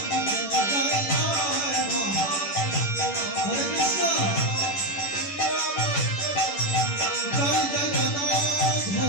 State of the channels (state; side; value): late; right; 11 ms